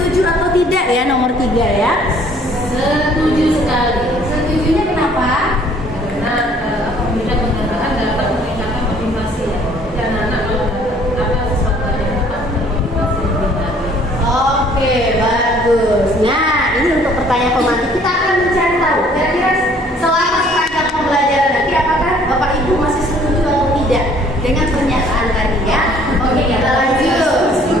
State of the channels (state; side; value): normal; both; correlation 0.58